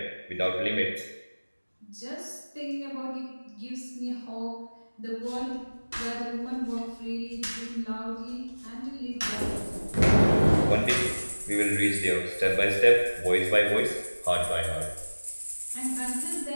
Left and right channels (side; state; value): both; inverted; correlation -1.00